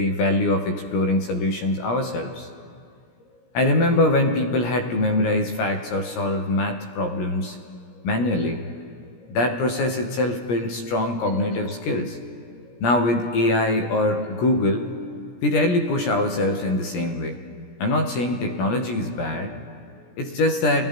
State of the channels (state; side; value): late; right; 17 ms